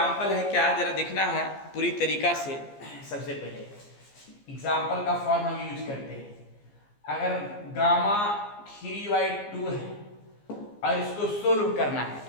है, क्या जरा देखना है पूरी तरीका से। सबसे पहले एग्जाम्पल का फॉर्म हम यूज करते हैं। अगर गामा 3/2 है और इसको सोल्व करना है,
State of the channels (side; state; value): right; late; 15 ms